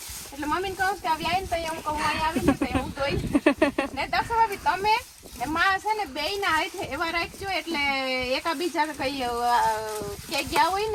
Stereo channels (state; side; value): identical; both; correlation 1.00